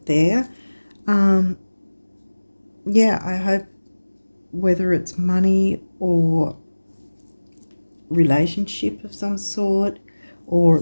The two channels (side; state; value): both; inverted; correlation -1.00